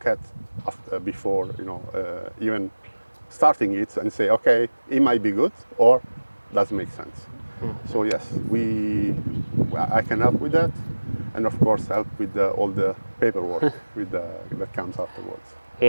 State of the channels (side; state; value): both; inverted; correlation -1.00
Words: at before, you know, even starting it and say, okay, it might be good or doesn't make sense. So yes, I can help with that, and of course help with all the paperwork that comes afterwards.